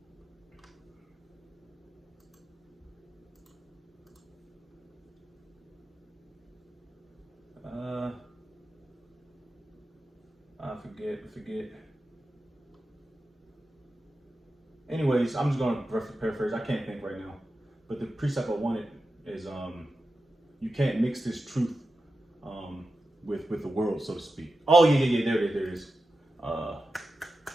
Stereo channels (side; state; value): both; normal; correlation 0.91